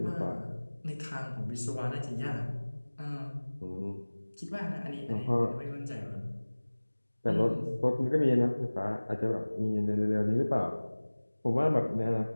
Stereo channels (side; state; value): both; inverted; correlation -1.00